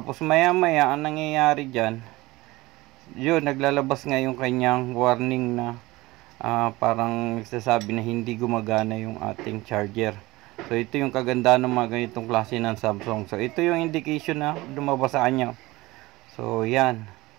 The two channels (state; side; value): quieter; left; 20.2 dB